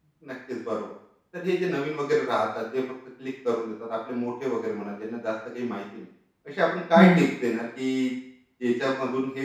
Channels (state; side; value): identical; both; correlation 1.00